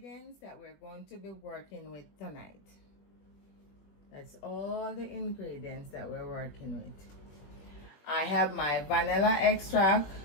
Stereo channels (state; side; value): late; right; 21 ms